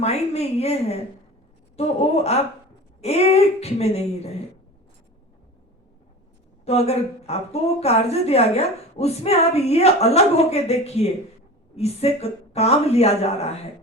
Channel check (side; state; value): both; normal; correlation 0.34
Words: में ये है तो वो आप एक में नहीं रहे। तो अगर आपको वो कार्य दिया गया उसमें आप ये अलग होके देखिए, इससे काम लिया जा रहा है।